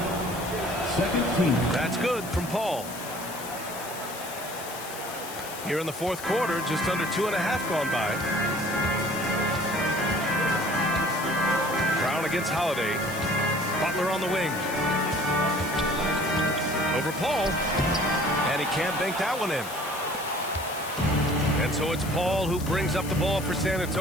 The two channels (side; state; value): left; noise; hiss, 12 dB below the sound